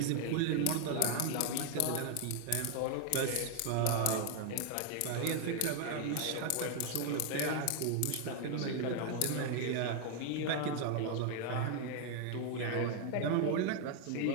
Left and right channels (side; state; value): both; different; correlation 0.00